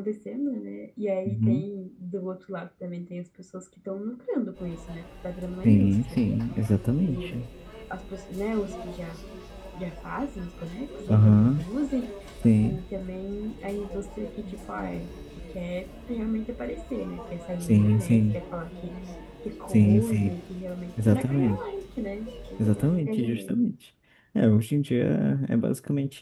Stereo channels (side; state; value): both; identical; correlation 1.00